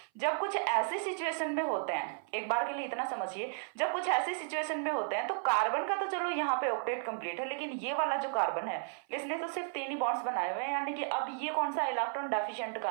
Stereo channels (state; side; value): silent; left; 55 dB below the other